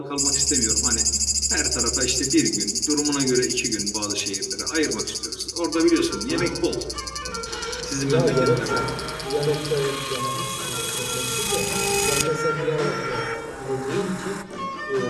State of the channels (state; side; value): identical; both; correlation 1.00